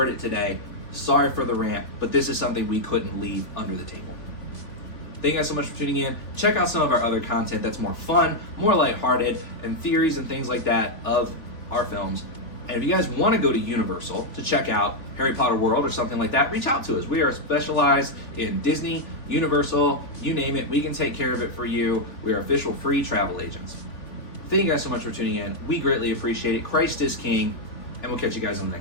it today. Sorry for the rant, but this is something we couldn't leave under the table. Thank you guys so much for tuning in. Check out some of our other content that's more fun, more lighthearted, and theories and things like that of our films. And if you guys want to go to Universal to check out Harry Potter World or something like that, reach out to us. We are specialized in Disney, Universal, you name it. We can take care of it for you. We are official free travel agents. Thank you guys so much for tuning in. We greatly appreciate it. Christ is King, and we'll catch you guys on the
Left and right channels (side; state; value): right; late; 3.5 ms